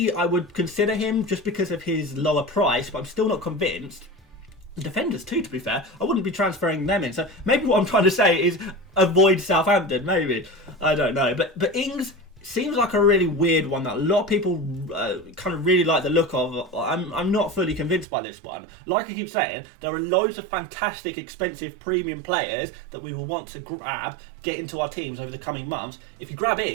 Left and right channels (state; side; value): drops out; left; at 18.1 s